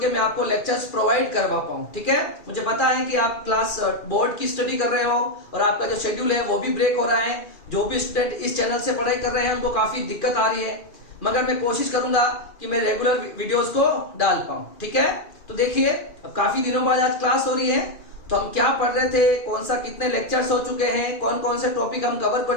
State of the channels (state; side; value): late; right; 2.4 ms